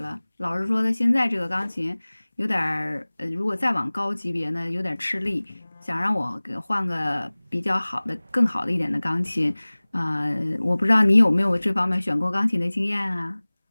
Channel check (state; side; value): inverted; both; correlation -1.00